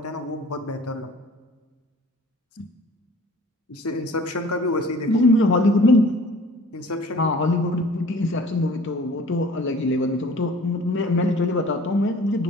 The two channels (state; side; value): normal; both; correlation 0.47